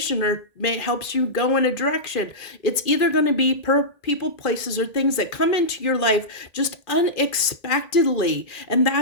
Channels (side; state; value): right; late; 2.4 ms